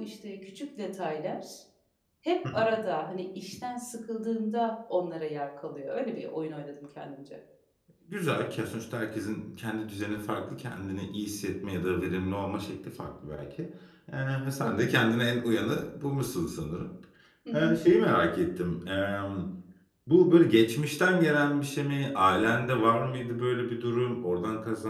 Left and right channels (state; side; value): identical; both; correlation 1.00